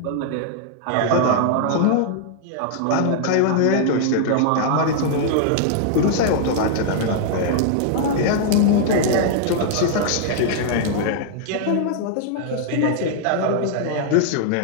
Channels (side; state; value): both; different; correlation -0.01